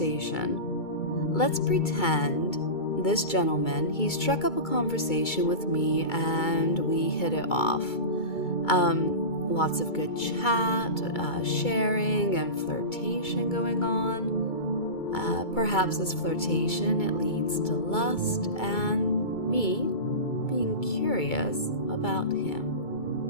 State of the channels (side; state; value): right; late; 2.3 ms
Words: Let's pretend this gentleman, he struck up a conversation with me and we hit it off. Lots of good chat, sharing, and flirtation going on. Perhaps this flirtation, it leads to lust and me being curious about him.